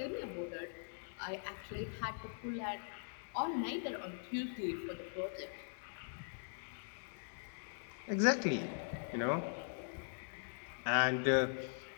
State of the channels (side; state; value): right; silent; digital silence